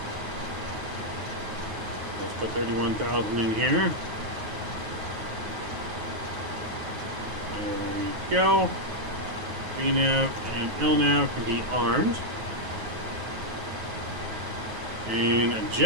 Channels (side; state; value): left; late; 9.4 ms